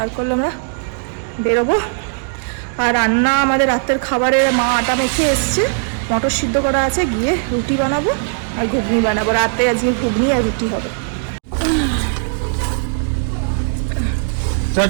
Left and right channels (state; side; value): silent; left; digital silence